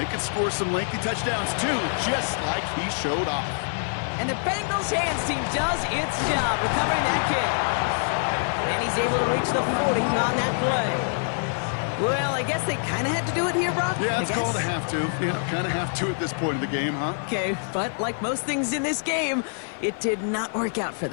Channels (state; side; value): silent; right; digital silence